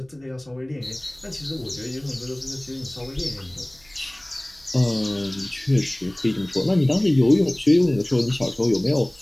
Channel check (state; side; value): noise; right; hum, 30 dB below the sound